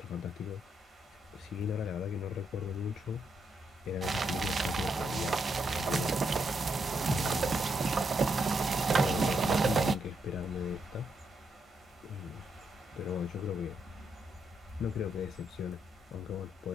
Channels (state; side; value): normal; both; correlation 0.80